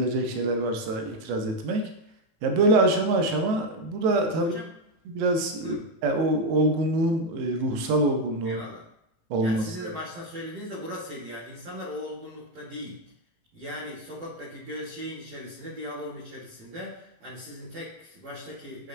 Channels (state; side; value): late; left; 18 ms